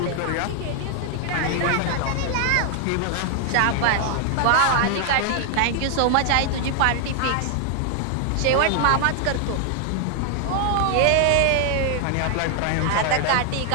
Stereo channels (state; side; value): different; both; correlation 0.00